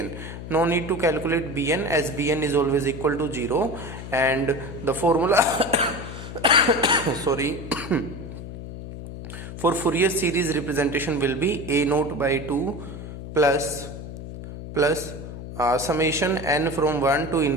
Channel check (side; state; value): left; noise; hum, 10 dB below the sound